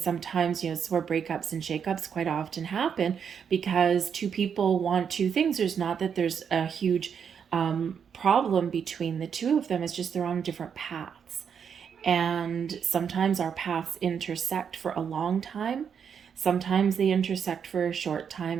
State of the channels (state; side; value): quieter; left; 7.3 dB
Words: where breakups and shakeups quite often happen because two people want two things. There's not that there's a huge problem between the two of them. It's just they're on different paths. And sometimes our paths intersect for a long time. Sometimes they intersect for a short